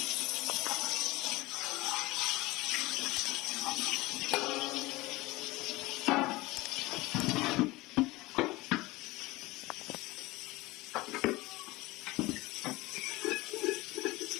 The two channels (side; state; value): right; quieter; 20.7 dB